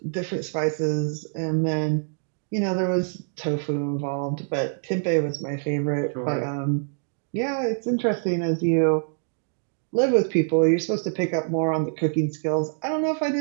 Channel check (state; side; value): silent; left; 60 dB below the other